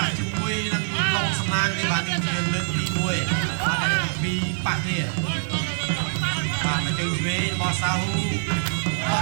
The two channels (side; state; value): left; silent; 61 dB below the other